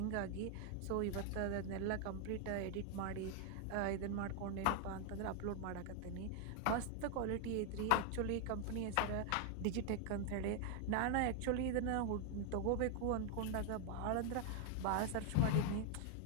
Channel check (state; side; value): different; both; correlation 0.00